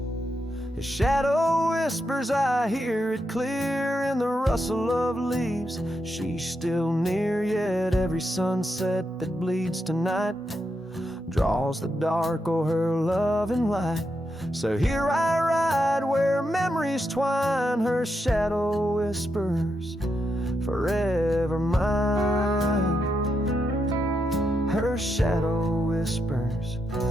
His shadow whispers, I hear it clear in the rustle of leaves. She's still near, yet every sunset that bleeds tonight draws the dark o'er her loving light. So here I ride where memories twine, her shadow whispers, forever mine. Her shadow whispers,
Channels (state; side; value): normal; both; correlation 0.84